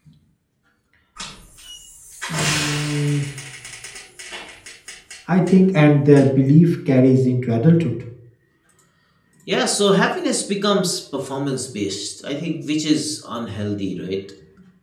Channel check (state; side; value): identical; both; correlation 1.00